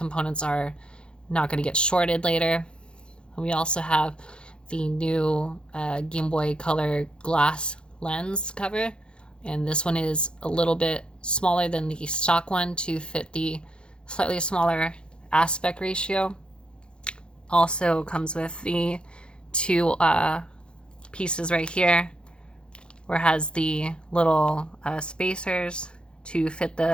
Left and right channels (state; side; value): late; right; 0.053 ms